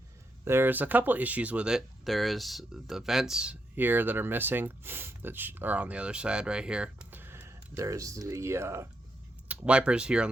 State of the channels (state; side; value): normal; both; correlation 0.81